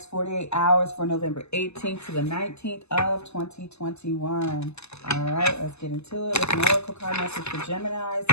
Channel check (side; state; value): right; late; 0.80 ms